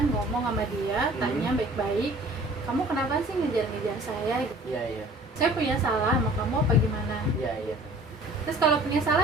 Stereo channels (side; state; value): both; normal; correlation 0.50